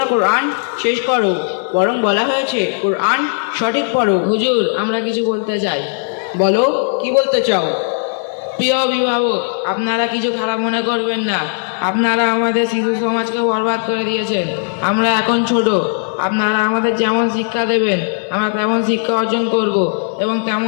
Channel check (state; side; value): silent; right; 60 dB below the other